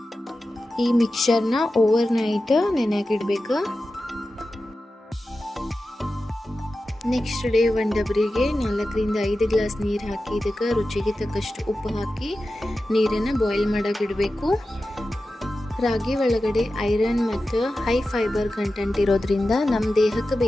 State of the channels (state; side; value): normal; both; correlation 0.93